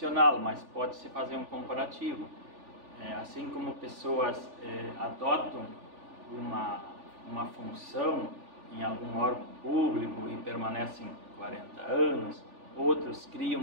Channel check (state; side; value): late; left; 3.4 ms